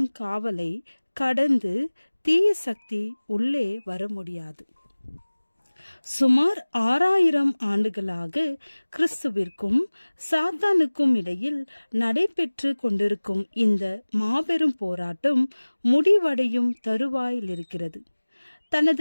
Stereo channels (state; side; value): inverted; both; correlation -1.00